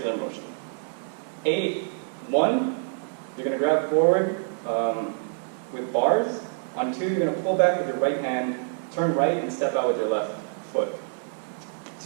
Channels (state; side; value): silent; left; 61 dB below the other